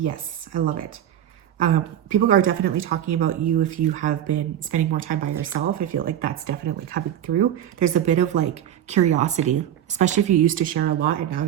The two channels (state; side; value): quieter; left; 10.8 dB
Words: I love it. People are definitely talking about you if you have been spending more time by yourself. I feel like that's definitely coming through. There's a bit of like curiosity, especially if you used to share a lot and now